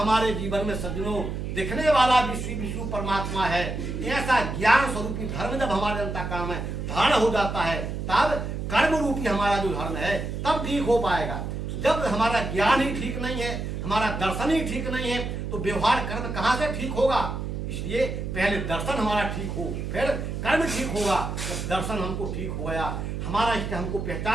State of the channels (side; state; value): right; noise; hum, 4 dB below the sound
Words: जीवन में सज्जनों दिखने वाला विश्व परमात्मा है, ऐसा ज्ञान स्वरूपी धर्म जब हमारे अंतःकरण में धारण हो जाता है, तब कर्म रूपी हमारा जो धर्म है तब ठीक हो पाएगा। जब हमारा ज्ञान ही ठीक नहीं है, हमारा दर्शन ही ठीक नहीं है, तो व्यवहार कर्म कहाँ से ठीक होगा? इसलिए पहले दर्शन हमारा ठीक हो, फिर कर्म ठीक होगा। जब दर्शन हमको ठीक हो गया, हमारा इष्ट हमको